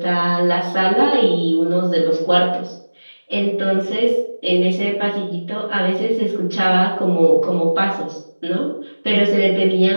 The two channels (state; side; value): inverted; both; correlation -1.00